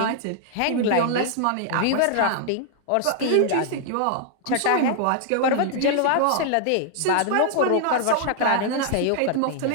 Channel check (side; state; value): both; different; correlation -0.01